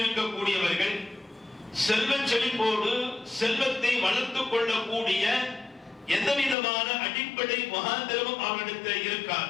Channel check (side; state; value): right; drops out; at 6.6 s